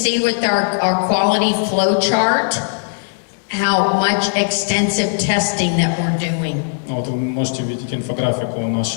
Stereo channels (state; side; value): silent; right; digital silence